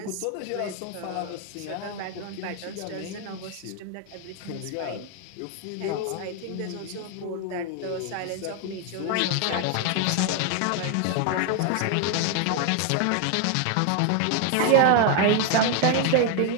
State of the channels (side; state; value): both; different; correlation 0.01